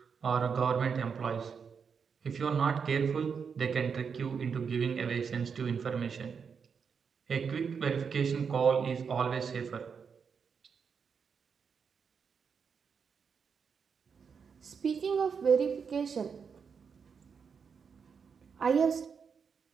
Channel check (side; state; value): left; quieter; 6.2 dB